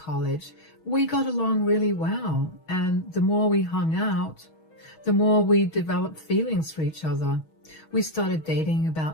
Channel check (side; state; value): right; late; 6.3 ms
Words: We got along really well, and the more we hung out, the more we developed feelings for each other. We started dating